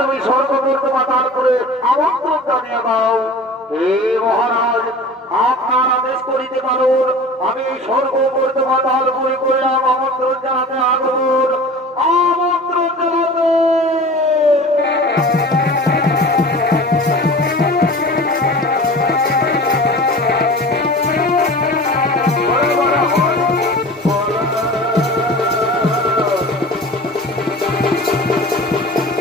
স্বর্গ করতে বা তারপরে আমন্ত্রণ জানিয়ে দাও। হে মহারাজ, আপনার আদেশ করিতে পারুন, আমি স্বর্গ করতে বা তারপরে করলাম আমন্ত্রণ জানাতে আগুন আমন্ত্রণ জানাতে।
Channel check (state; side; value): normal; both; correlation 0.38